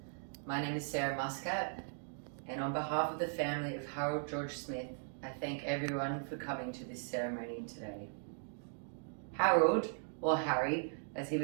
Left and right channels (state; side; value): silent; left; digital silence